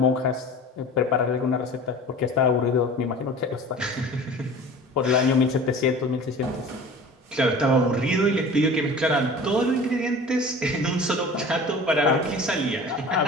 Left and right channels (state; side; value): normal; both; correlation 0.40